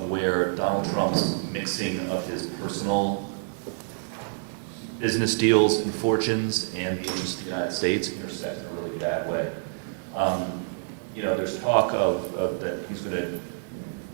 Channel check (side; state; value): left; silent; digital silence